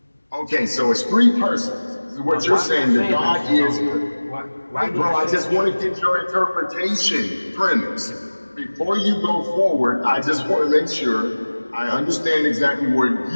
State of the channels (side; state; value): both; inverted; correlation -1.00